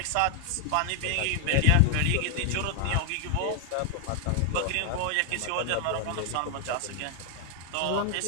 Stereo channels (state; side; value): different; both; correlation 0.00